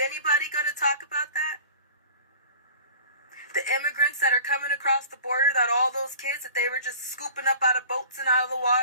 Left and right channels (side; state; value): both; inverted; correlation -0.43